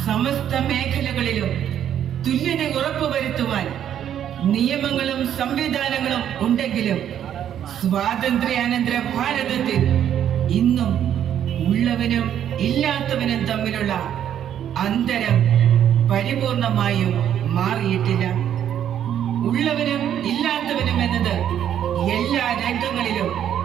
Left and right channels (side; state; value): left; quieter; 10.0 dB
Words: സമസ്ത മേഖലകളിലും തുല്യത ഉറപ്പുവരുത്തുവാൻ നിയമങ്ങളും സംവിധാനങ്ങളും ഉണ്ടെങ്കിലും സ്വാതന്ത്ര്യാനന്തര ഭാരതത്തിൽ ഇന്നും ഉള്ളവനും ഇല്ലാത്തവനും തമ്മിലുള്ള അന്തരം പരിപൂർണമായും മാറിയിട്ടില്ല. ഉള്ളവനും ഇല്ലാത്തവനും എന്നത് എല്ലാ രംഗങ്ങളിലും